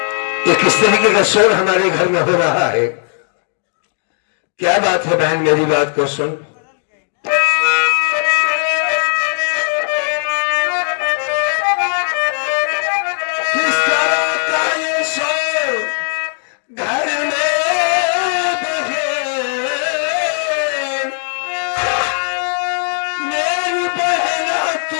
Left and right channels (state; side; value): silent; right; 68 dB below the other